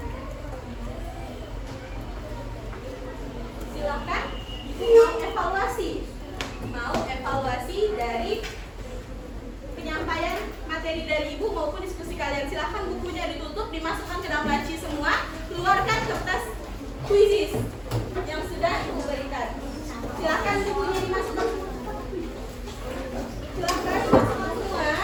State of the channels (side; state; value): both; identical; correlation 1.00